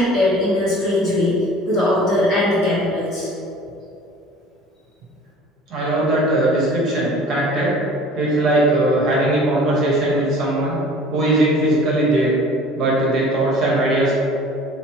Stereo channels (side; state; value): both; normal; correlation 0.46